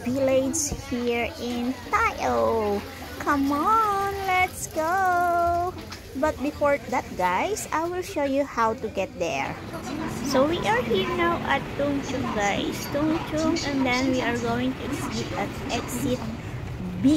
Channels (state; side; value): identical; both; correlation 1.00